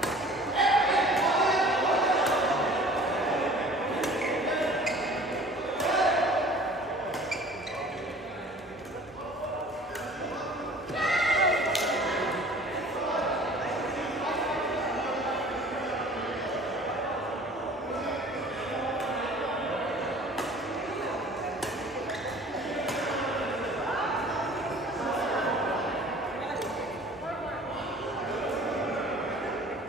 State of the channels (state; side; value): normal; both; correlation 0.47